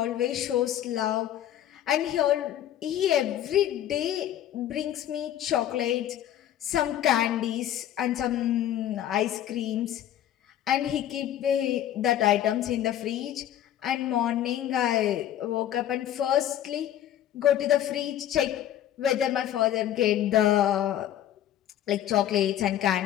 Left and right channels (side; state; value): right; quieter; 11.5 dB